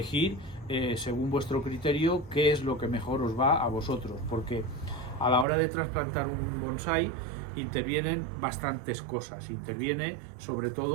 según vuestro criterio qué es lo que mejor os va a vosotros, porque a la hora de trasplantar un bonsái intervienen bastantes cosas. Interviene sobre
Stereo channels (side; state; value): left; drops out; at 5.5 s